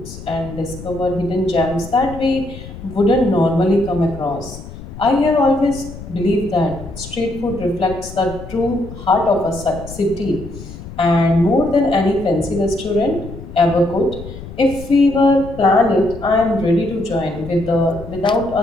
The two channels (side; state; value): left; noise; rumble, 13 dB below the sound